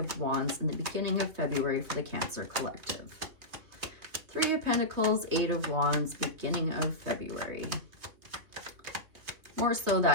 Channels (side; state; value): left; late; 3.0 ms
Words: Wands in the beginning of February for the Cancer Collective. Three of Pentacles, Eight of Wands, beginning of February. More so